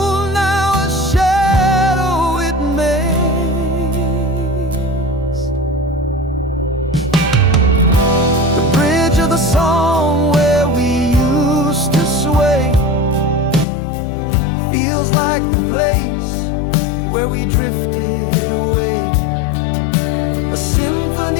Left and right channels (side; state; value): right; drops out; at 13.7 s